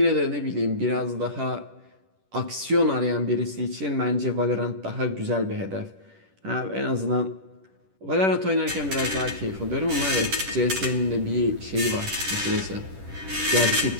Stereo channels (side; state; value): left; late; 10 ms